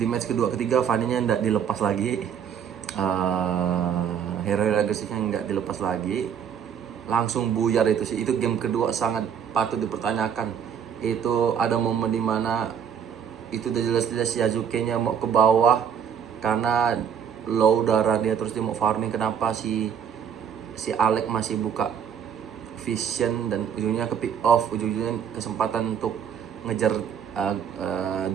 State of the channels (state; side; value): quieter; left; 8.1 dB